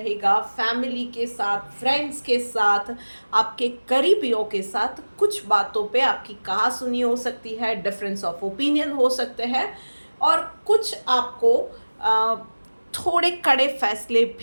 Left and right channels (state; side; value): inverted; both; correlation -1.00